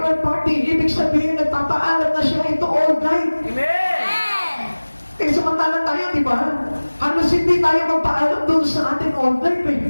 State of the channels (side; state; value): both; inverted; correlation -1.00